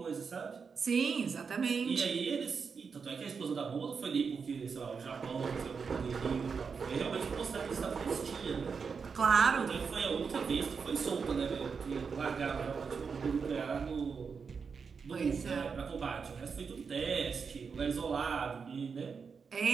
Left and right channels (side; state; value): left; quieter; 5.6 dB